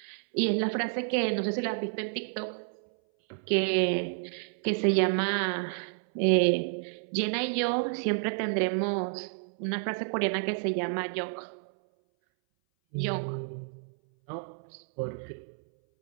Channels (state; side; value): silent; left; 58 dB below the other